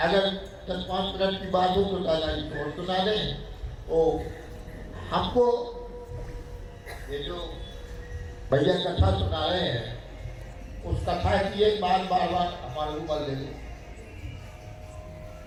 10-5 मिनट की बात हो तो दादाजी को सुना दें, तो हमको ये जो भैया कथा सुना रहे हैं उस कथा की एक बार बार हमारे ऊपर ले लो,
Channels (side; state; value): both; identical; correlation 1.00